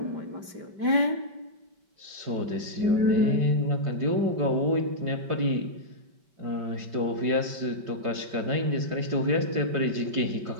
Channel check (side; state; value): left; late; 5.2 ms